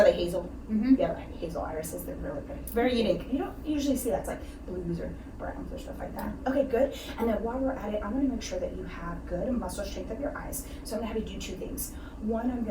they hazel? Mm-hmm. Yeah, like hazel irises. They're really pretty. Very unique. You don't usually see that. It's like blues or browns or stuff like that. Okay, good. And then while we're at it, I'm going to make sure that you have good muscle strength of your eyes. So I'm going to have you do 2 things. One, I'm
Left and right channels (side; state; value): both; identical; correlation 1.00